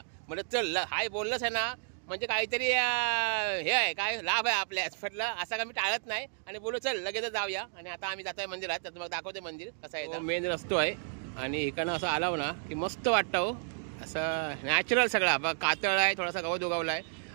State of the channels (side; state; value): left; silent; digital silence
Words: म्हणलं चल हाय बोललंच आहे ना, म्हणजे काहीतरी हे आहे काय लाभ आहे आपल्या. म्हटलं असं का मी टाळत नाही आणि बोललो चल लगेच जाऊया. आणि आता आम्ही जातोय मंदिरात. तर तुम्हाला दाखवते मंदिर कसं आहे. मेन रस्तो आहे आणि इकडनं असं आलाव ना की मस्त वाटतं हो. असं नॅचरल सगळा बघा, कातळ आहे, थोडासा गवत उगवला आहे